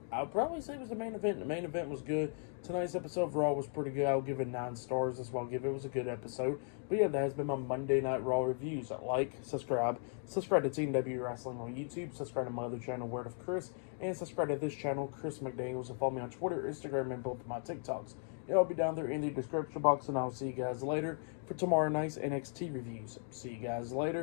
I'll probably say it was the main event. The main event was good. Tonight's episode of Raw was pretty good. I'll give it 9 stars. That's what I'll give it. It was a good episode. But yeah, that has been my Monday Night Raw reviews. Like, subscribe to Team W Wrestling on YouTube. Subscribe to my other channel, Word of Chris. And subscribe to this channel, Chris McDaniels. And follow me on Twitter, Instagram, and both of my TikToks. It'll be down there in the description box. And I'll see you guys later for tomorrow night's NXT reviews. See you guys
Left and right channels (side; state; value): right; silent; 53 dB below the other